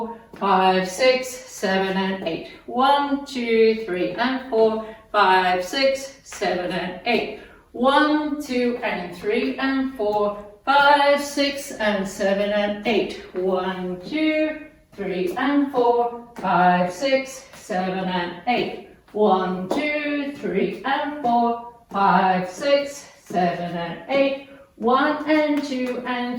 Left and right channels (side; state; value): both; identical; correlation 1.00